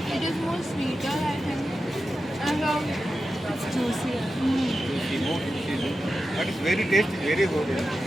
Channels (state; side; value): normal; both; correlation 0.91